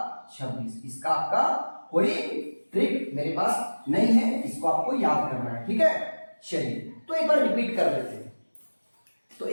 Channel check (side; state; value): both; inverted; correlation -1.00